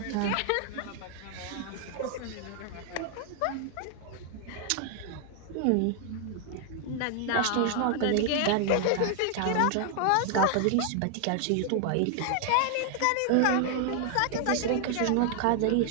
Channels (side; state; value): both; different; correlation 0.00